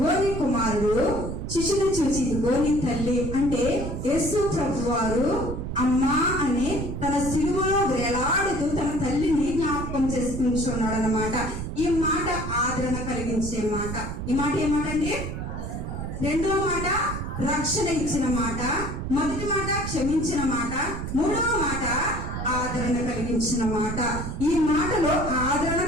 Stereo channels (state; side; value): noise; right; rumble, 5 dB below the sound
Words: నీ కుమారుడు. శిష్యుని చూసి ఇదిగో నీ తల్లి అంటే యేసు ప్రభువారు అమ్మా అని తన శిలువలో వేలాడుతూ తన తల్లిని జ్ఞాపకం చేసుకుంటున్నాడు అన్నమాట. ఈ మాట ఆదరణ కలిగించే మాట. ఈ మాట ఏమాట అండి? రెండవ మాట రక్షణ ఇచ్చిన మాట, మొదటి మాట క్షమించిన మాట, మూడవ మాట ఆదరణ కలిగించిన మాట. ఈ మాటలో ఆదరణ